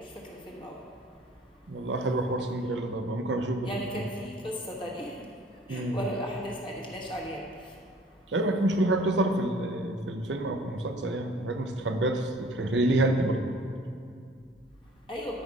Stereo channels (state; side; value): normal; both; correlation 0.53